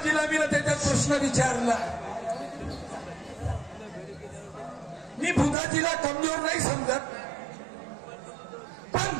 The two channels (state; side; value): drops out; left; at 5.6 s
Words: मी त्याच्यात प्रश्न विचारला. मी बुधाजीला कमजोर नाही समजत, पण